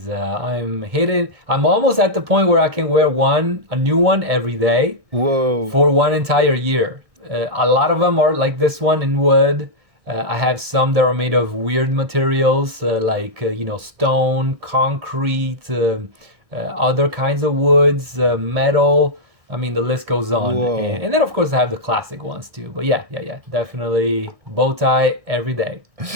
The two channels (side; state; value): left; late; 1.8 ms